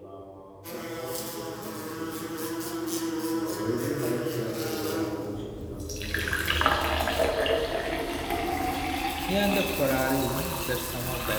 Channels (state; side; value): identical; both; correlation 1.00